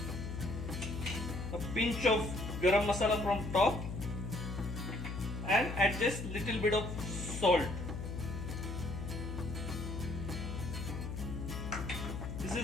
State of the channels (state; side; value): noise; left; hum, 5 dB below the sound